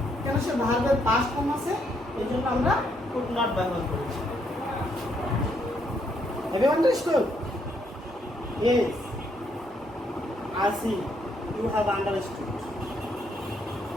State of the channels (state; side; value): normal; both; correlation 0.73